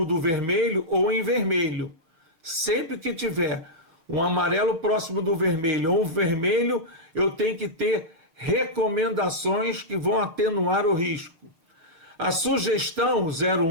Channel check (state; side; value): late; left; 6.3 ms